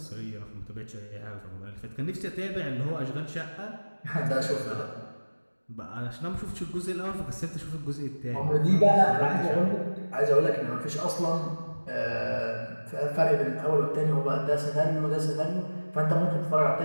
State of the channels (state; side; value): inverted; both; correlation -1.00